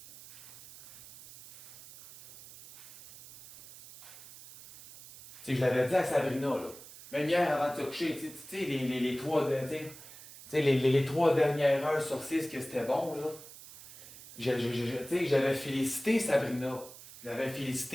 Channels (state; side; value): noise; right; hiss, 17 dB below the sound